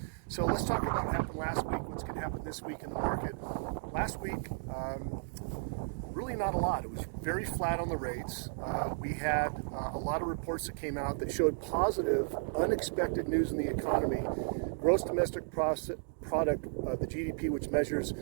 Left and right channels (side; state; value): left; silent; digital silence